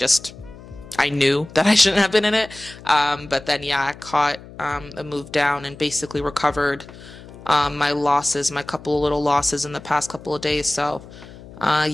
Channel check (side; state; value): left; noise; hum, 18 dB below the sound